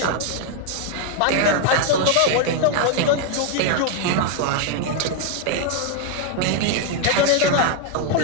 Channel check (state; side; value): different; both; correlation 0.01